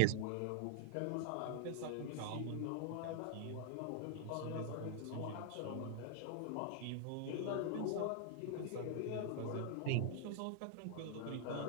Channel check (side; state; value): both; different; correlation 0.00